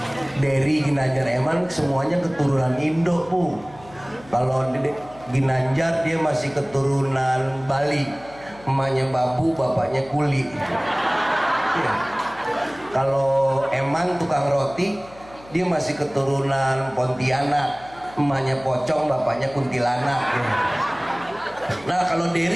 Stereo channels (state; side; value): noise; left; hum, 22 dB below the sound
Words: Dery, Ginanjar, Eman semuanya keturunan Indo Bu. Kalau Ginanjar dia masih keturunan Bali, emaknya babu, bapaknya kuli. Ya. Kalau Eman tukang roti, dia masih keturunan Pontianak, emaknya pocong, bapaknya kuntilanak. Ya. Nah kalau